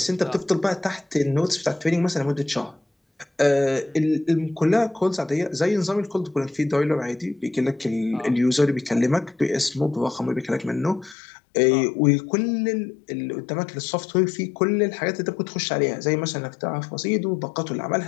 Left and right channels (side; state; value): right; drops out; at 11.2 s